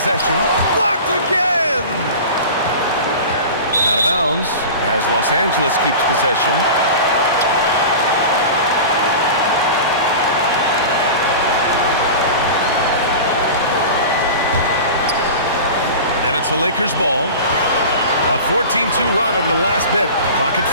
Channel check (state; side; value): inverted; both; correlation -0.33